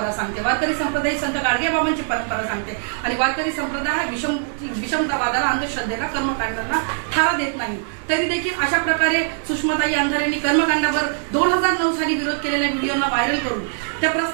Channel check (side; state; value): left; silent; digital silence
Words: सांगते, वारकरी संप्रदाय संत गाडगेबाबांची परंपरा सांगते आणि वारकरी संप्रदाय हा विषमतावादाला, अंधश्रद्धेला, कर्मकांडांना थारा देत नाही। तरी देखील अशा प्रकारे सुषमाताई अंधारेंनी कर्मकांडावर 2009 साली विरोध केलेल्या व्हिडिओना व्हायरल करून त्या